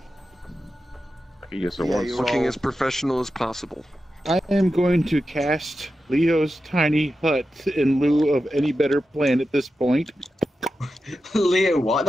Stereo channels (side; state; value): both; normal; correlation 0.91